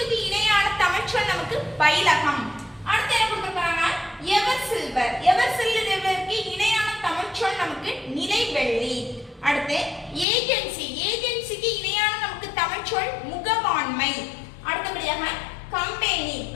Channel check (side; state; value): right; drops out; at 10.2 s